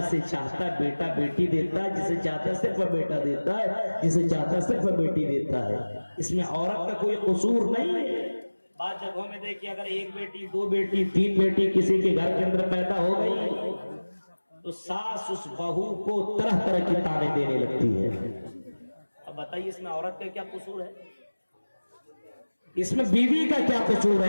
चाहता है बेटा बेटी देता है, जिसे चाहता है सिर्फ बेटा देता है, जिसे चाहता है सिर्फ बेटी देता है। इसमें औरत का कोई कसूर नहीं है। बाद जगहों में देखिए, अगर एक बेटी दो बेटी तीन बेटी किसी के घर के अंदर पैदा हो गई, तो सास उस बहू को तरह तरह की ताने देने लगती है। अब बताइए इसमें औरत का क्या कसूर है? इसमें बीवी का क्या कसूर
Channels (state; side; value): inverted; both; correlation -1.00